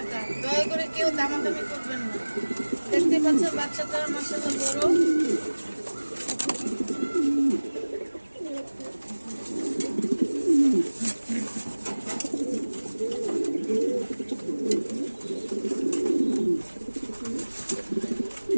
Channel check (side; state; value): both; inverted; correlation -1.00